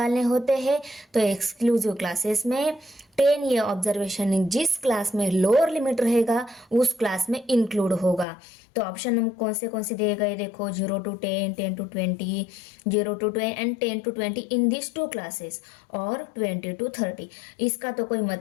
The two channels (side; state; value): right; drops out; at 8.2 s